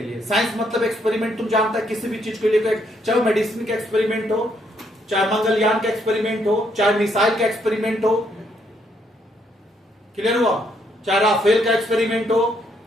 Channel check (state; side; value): normal; both; correlation 0.73